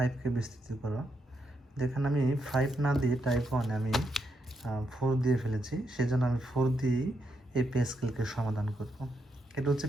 বিস্তৃত করো। যেখানে আমি 5 না দিয়ে টাইপ ওয়ানে আমি 4 দিয়ে ফেলেছি, সেজন্য আমি 4 দিয়েই এই প্যাসকেলকে সমাধান করব। এটা হচ্ছে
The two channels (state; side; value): normal; both; correlation 0.81